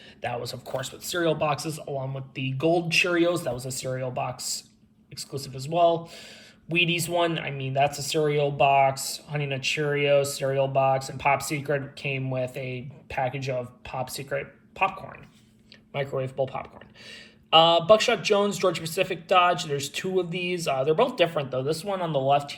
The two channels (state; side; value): identical; both; correlation 1.00